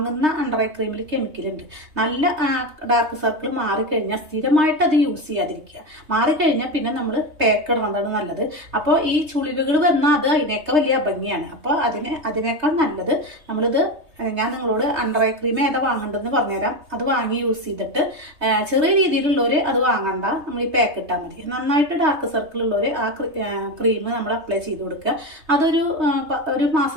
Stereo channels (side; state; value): left; late; 3.2 ms